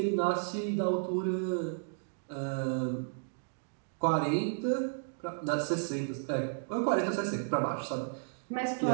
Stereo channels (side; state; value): left; silent; digital silence